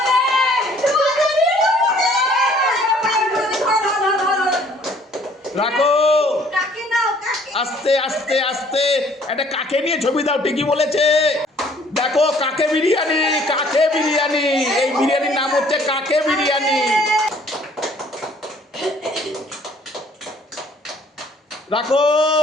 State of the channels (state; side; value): normal; both; correlation 0.58